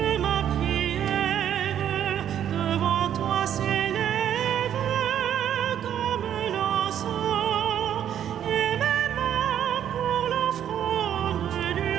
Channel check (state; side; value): quieter; left; 10.0 dB